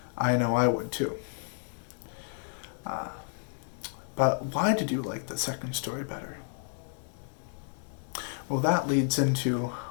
I know I would too. But why did you like the second story better? Well, that leads into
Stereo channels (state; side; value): silent; right; 57 dB below the other